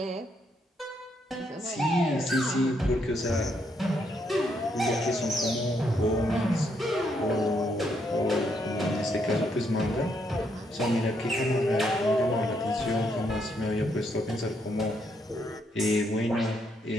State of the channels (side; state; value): both; normal; correlation 0.75